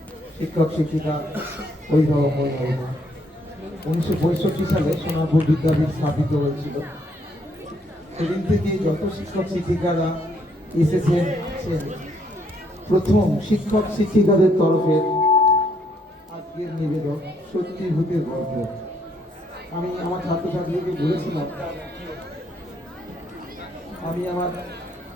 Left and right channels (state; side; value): normal; both; correlation 0.70